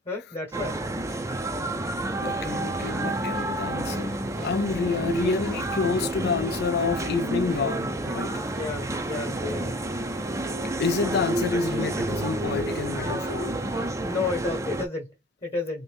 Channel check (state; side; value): normal; both; correlation 0.45